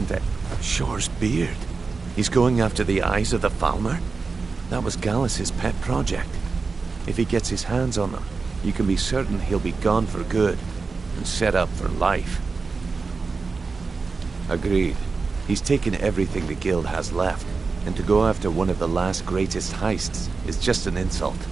to Shore's beard. He's going after the eyes of the Falmer? That was Gallus's pet project. If he gets his hands on them, you can be certain he'll be gone for good and set up for life. Agreed. He's taken everything the guild has left, and to go after one of the last greatest heists is just an insult.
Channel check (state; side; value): quieter; left; 4.4 dB